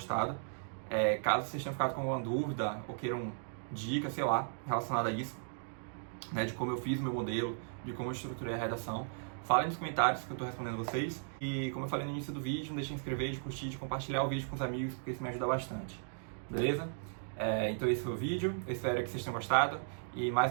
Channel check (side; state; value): left; silent; digital silence